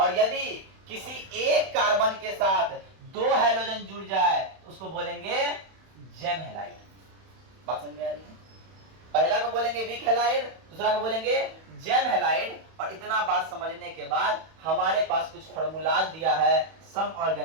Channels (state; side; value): late; left; 31 ms